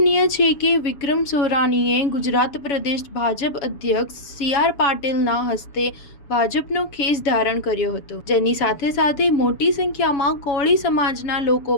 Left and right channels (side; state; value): right; late; 7.1 ms